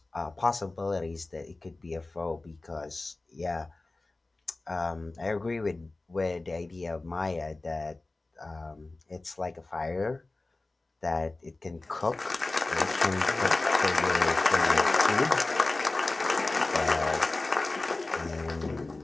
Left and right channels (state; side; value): quieter; right; 3.1 dB